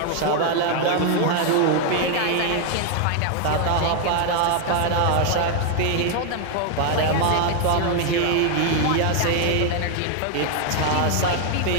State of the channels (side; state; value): both; different; correlation 0.00